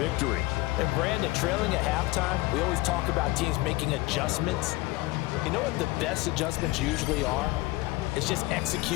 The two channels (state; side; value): quieter; right; 20.6 dB